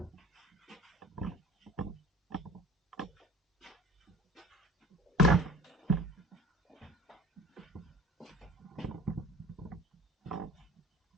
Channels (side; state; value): both; normal; correlation 0.43